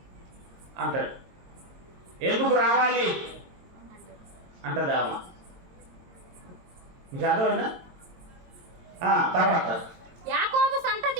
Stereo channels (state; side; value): late; left; 22 ms